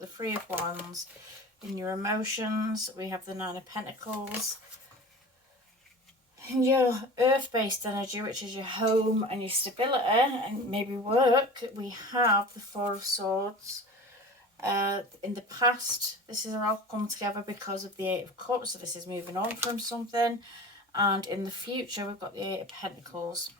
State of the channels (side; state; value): both; normal; correlation 0.36